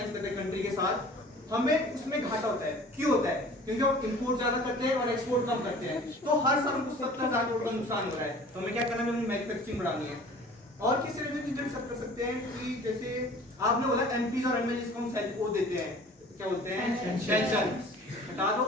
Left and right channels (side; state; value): both; normal; correlation 0.46